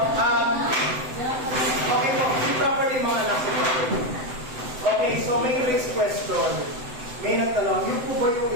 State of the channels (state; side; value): late; left; 7.9 ms